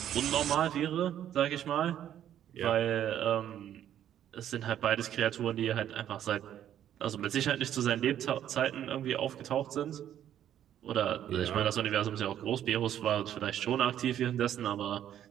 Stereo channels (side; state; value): left; quieter; 10.7 dB